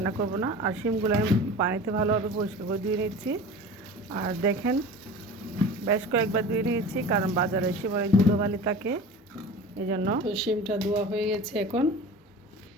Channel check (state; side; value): normal; both; correlation 0.36